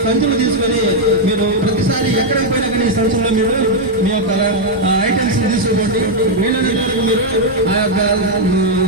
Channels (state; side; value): normal; both; correlation -0.01